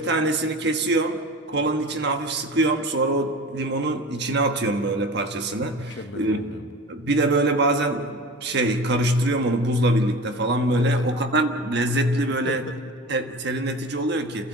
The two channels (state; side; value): normal; both; correlation 0.34